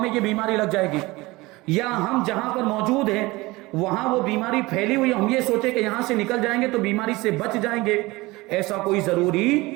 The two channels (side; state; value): left; quieter; 21.5 dB